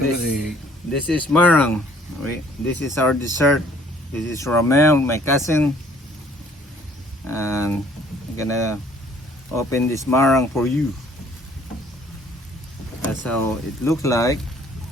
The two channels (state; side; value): normal; both; correlation 0.59